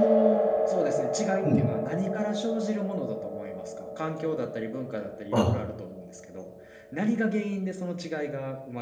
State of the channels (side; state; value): both; identical; correlation 1.00